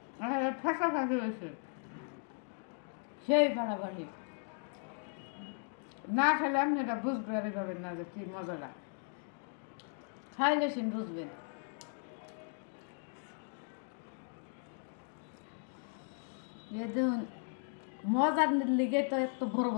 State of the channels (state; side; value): silent; right; 53 dB below the other